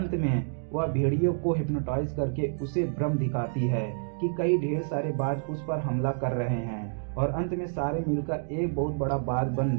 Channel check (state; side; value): silent; left; digital silence